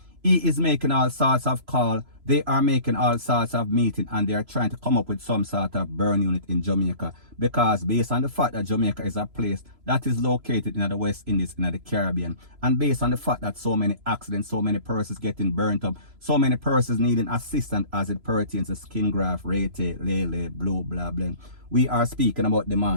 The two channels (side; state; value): left; late; 3.0 ms